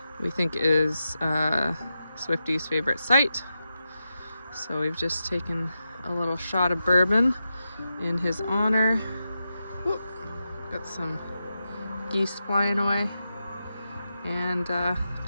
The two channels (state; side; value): inverted; both; correlation -0.89